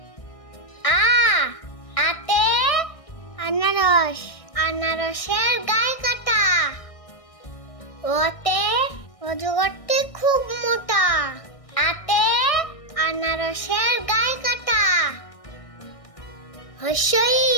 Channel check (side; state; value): right; late; 1.6 ms